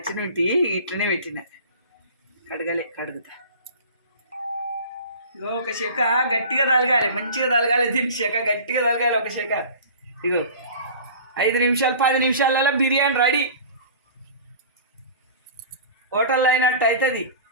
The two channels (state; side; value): inverted; both; correlation -0.40